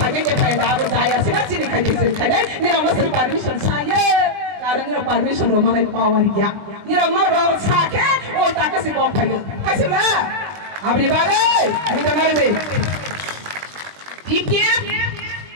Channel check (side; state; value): left; late; 20 ms